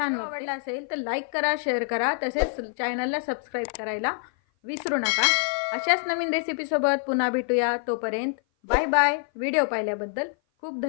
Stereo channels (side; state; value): right; silent; 56 dB below the other